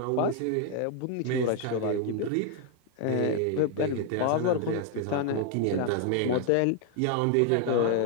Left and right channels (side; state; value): both; different; correlation 0.00